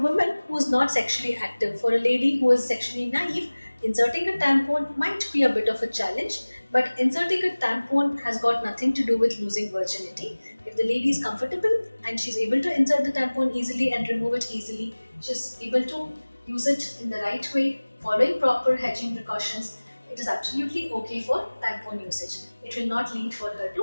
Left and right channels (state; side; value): inverted; both; correlation -1.00